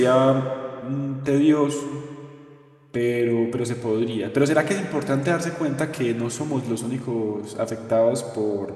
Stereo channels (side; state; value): both; identical; correlation 1.00